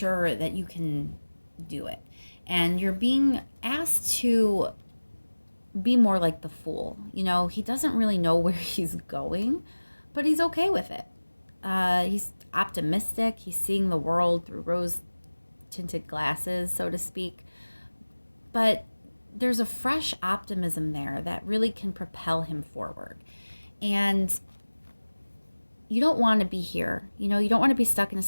that you can do it. And you're being asked to be more like the fool. He doesn't really know where he's going, but he's okay with it. He's optimistic. He's seeing the world through rose tinted glasses, so to speak. But there's a fresh optimism there that really can propel him forward. And you don't want to be here. You don't want to be stuck in a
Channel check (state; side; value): inverted; both; correlation -1.00